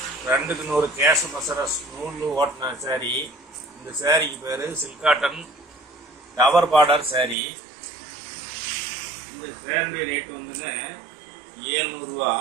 2க்கு 100 கேஷ் மசரஸ் நூல் ஓட்டின சாரி. இந்த சாரிக்கு பேரு silk cotton tower border sorry. இந்த சாரியுடைய ரேட்டு வந்துங்க 700 ரூபா.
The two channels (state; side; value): drops out; left; at 7.4 s